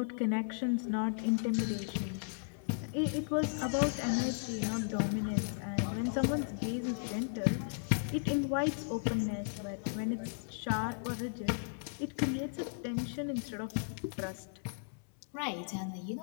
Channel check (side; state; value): right; silent; 54 dB below the other